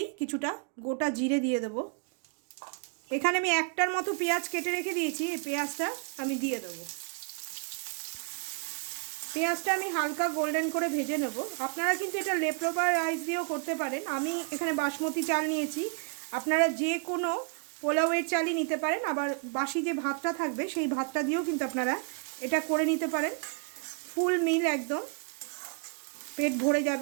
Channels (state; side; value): quieter; left; 37.8 dB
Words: কিছুটা গোটা জিরে দিয়ে দেব। এখানে আমি একটার মতো পেঁয়াজ কেটে রেখে দিয়েছি, এই পেঁয়াজটা আমি দিয়ে দেবো। পেঁয়াজটা আমি হালকা গোল্ডেন করে ভেজে নেব। আপনারা কিন্তু এটা লেফট-ওভার রাইস দিয়েও করতে পারেন। আমি এখানে বাসমতি চাল নিয়েছি, আপনারা যে কোনো পোলাওয়ের চালই নিতে পারেন। আবার বাসি যে ভাতটা থাকবে সেই ভাতটা দিয়েও কিন্তু আপনারা এটা করে নিতে পারেন। ফুল মিল, একদম পেট ভরে